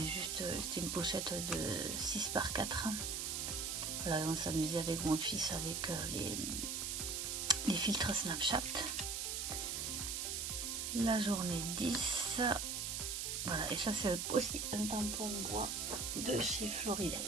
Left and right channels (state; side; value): noise; right; hiss, 2 dB below the sound